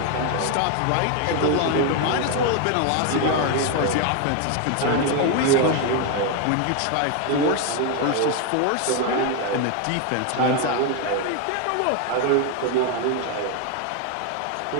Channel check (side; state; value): both; different; correlation 0.01